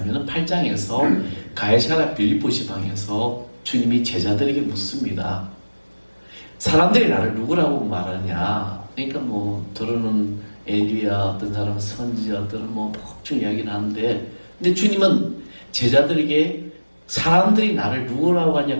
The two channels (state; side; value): inverted; both; correlation -1.00